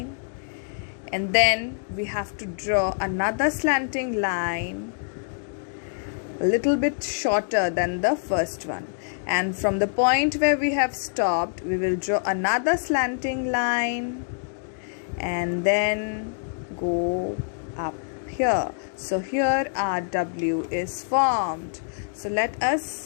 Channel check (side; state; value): right; silent; digital silence